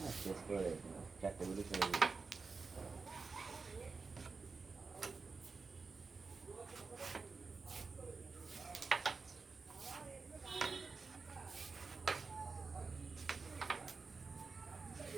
শেষ করে 4টে গুলি চলে যাবে।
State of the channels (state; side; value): quieter; left; 4.5 dB